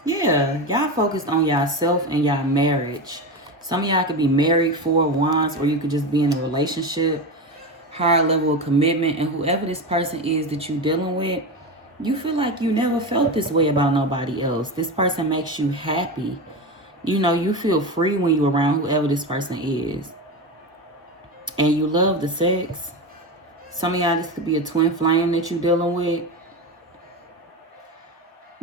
Yeah, y'all focused on yourself and y'all marriage. Some of y'all could be married 4 wands, or you could just be in a relationship, higher level of commitment. And whoever this person is that you're dealing with, you feel like you never felt this way about nobody else. This person makes you happy. You feel free when you're around whoever this person is. And you love the sex. Some of y'all, this could be a twin flame that you're dealing with.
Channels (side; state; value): both; normal; correlation 0.20